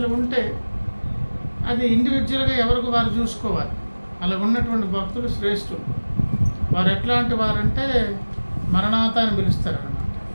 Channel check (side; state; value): both; inverted; correlation -1.00